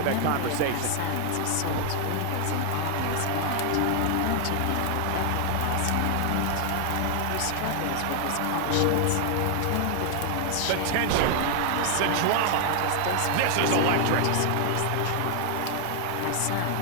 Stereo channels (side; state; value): both; different; correlation 0.00